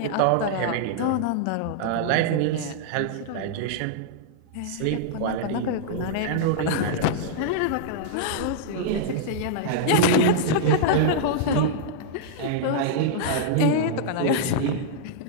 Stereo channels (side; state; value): both; different; correlation -0.02